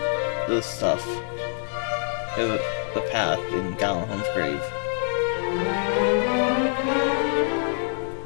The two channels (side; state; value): right; silent; 57 dB below the other